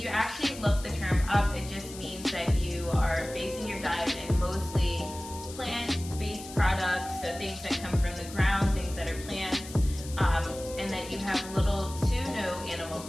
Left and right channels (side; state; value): left; noise; hiss, 14 dB below the sound